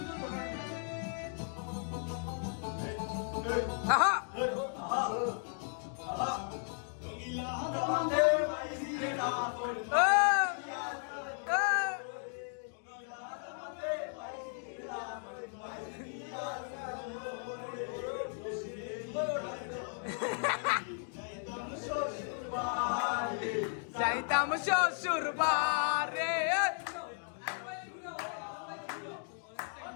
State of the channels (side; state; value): right; silent; 54 dB below the other